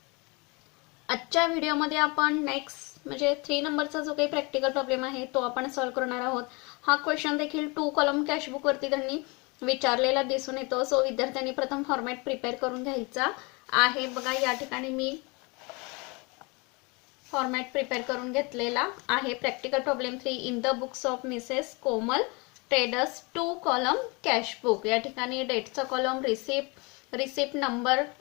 आजच्या व्हिडिओमध्ये आपण नेक्स्ट म्हणजे 3 नंबरचा जो काही प्रॅक्टिकल प्रॉब्लेम आहे तो आपण सॉल्व्ह करणार आहोत. हा क्वेश्चन देखील 2 कॉलम कॅशबुक वरती त्यांनी विचारलेला दिसून येतो. सो विद्यार्थ्यांनी प्रथम फॉर्मॅट प्रिपेअर करून घ्यायचा आहे. बघा या ठिकाणी मी फॉर्मॅट प्रिपेअर करून घेतलेला आहे. Practical problem 3 in the books of Mrs Komal traders 2 column cash book. या ठिकाणी डेटचा कॉलम, रिसिप्ट नंबर,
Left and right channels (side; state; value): right; quieter; 28.4 dB